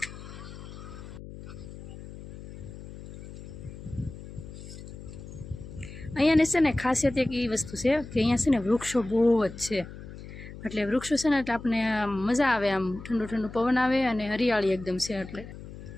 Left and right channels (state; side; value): noise; left; hum, 13 dB below the sound